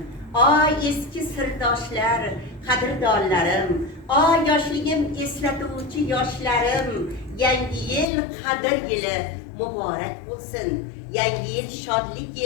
eski sirdoshlar, qadrdonlarim, yoshligim eslatuvchi yoshlarim. Yangi yil qadr yili muborak bo'lsin. Yangi yil shodlik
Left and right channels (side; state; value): right; drops out; at 8.1 s